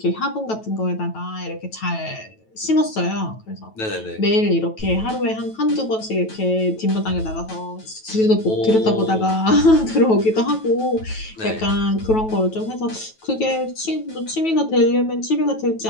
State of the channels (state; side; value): late; right; 9.2 ms